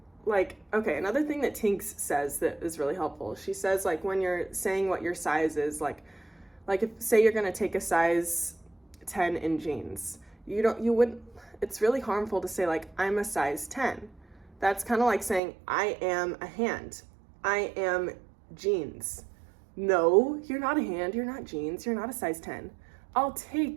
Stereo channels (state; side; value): drops out; left; at 15.4 s